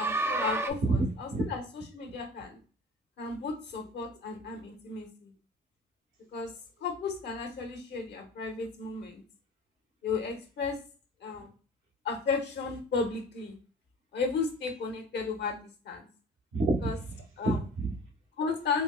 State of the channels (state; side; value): normal; both; correlation 0.41